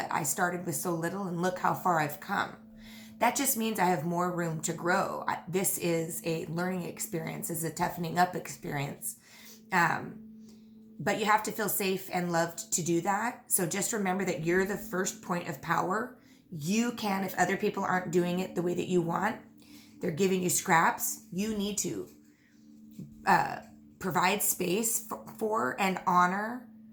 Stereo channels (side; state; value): both; identical; correlation 1.00